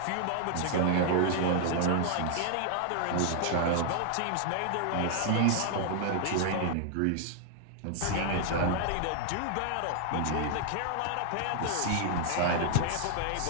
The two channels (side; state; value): both; different; correlation 0.00